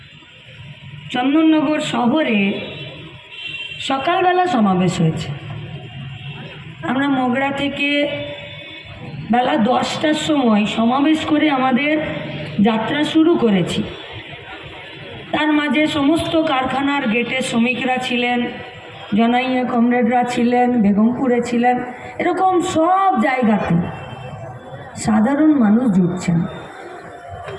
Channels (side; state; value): both; identical; correlation 1.00